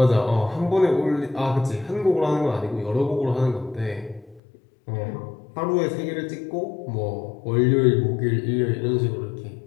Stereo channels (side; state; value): right; drops out; at 4.4 s